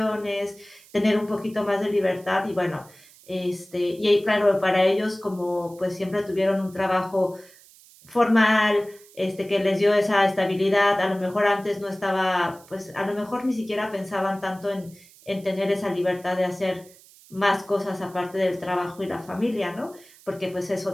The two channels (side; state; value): right; noise; hiss, 25 dB below the sound